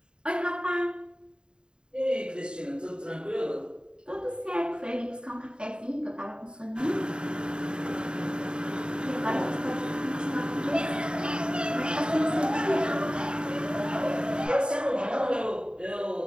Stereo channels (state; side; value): late; left; 0.050 ms